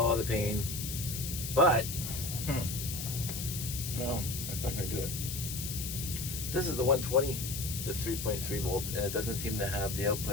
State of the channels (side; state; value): left; noise; hiss, 5 dB below the sound